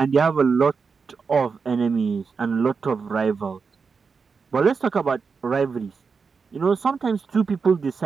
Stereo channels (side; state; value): left; quieter; 5.2 dB